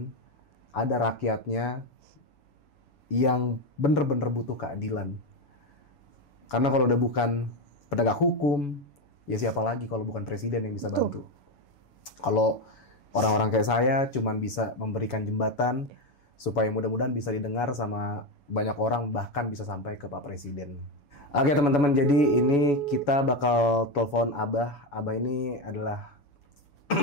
ada rakyatnya yang bener-bener butuh keadilan. Karena kalau udah bukan penegak hukum, ya siapa lagi kalau bukan Presiden yang bisa bantu. Kalau orang-orang kayak saya cuman bisa memberikan jembatan supaya mudah-mudahan bisa didengar sama banyak orang, bahkan bisa sampai ke Pak Presiden. Oke teman-teman, jadi ini kita bakal telepon Abah. Abah ini adalah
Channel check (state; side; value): late; right; 7.0 ms